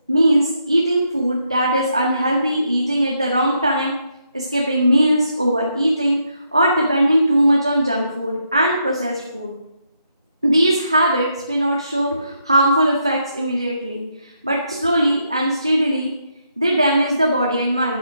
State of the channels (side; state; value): both; inverted; correlation -0.78